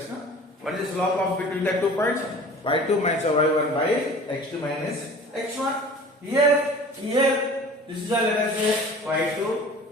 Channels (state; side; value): normal; both; correlation 0.43